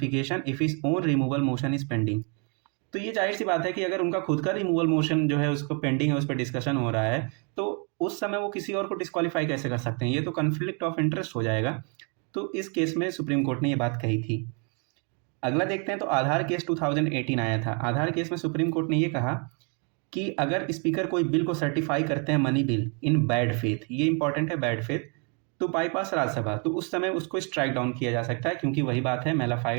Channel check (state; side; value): quieter; left; 36.7 dB